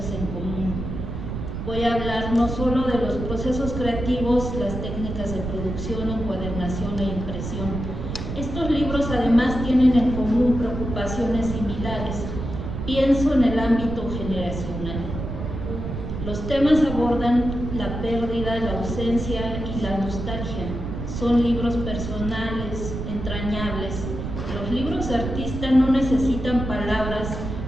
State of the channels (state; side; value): noise; right; rumble, 5 dB below the sound